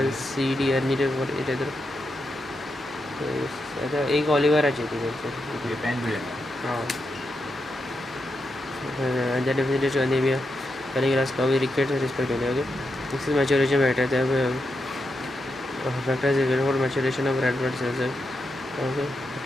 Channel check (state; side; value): normal; both; correlation 0.85